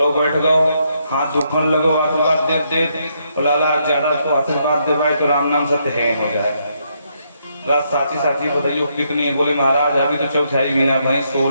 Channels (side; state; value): both; inverted; correlation -0.76